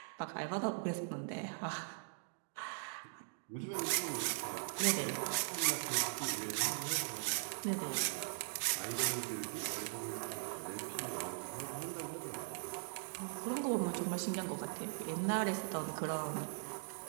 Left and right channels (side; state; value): left; silent; digital silence